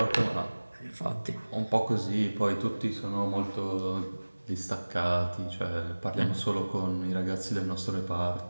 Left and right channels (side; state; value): both; inverted; correlation -1.00